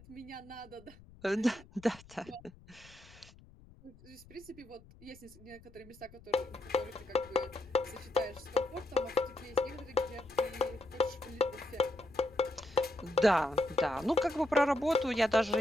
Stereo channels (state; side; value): noise; left; rumble, 23 dB below the sound